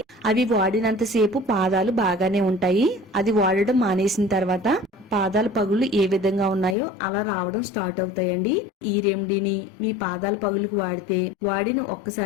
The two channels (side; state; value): right; drops out; at 6.8 s